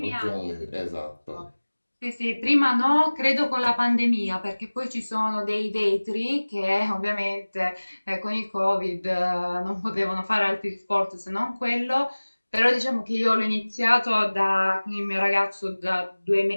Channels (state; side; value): inverted; both; correlation -1.00